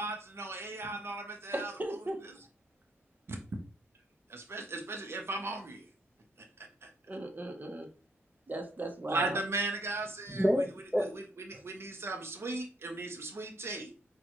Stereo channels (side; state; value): both; normal; correlation 0.72